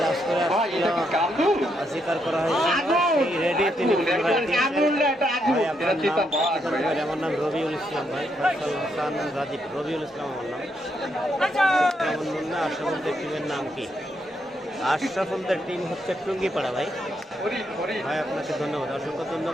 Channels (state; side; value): normal; both; correlation 0.78